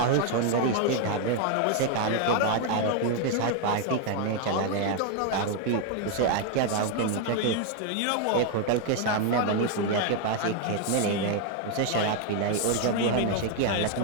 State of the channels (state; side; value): different; both; correlation 0.01